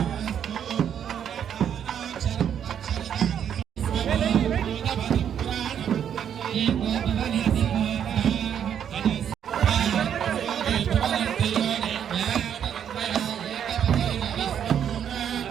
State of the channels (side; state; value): left; quieter; 8.9 dB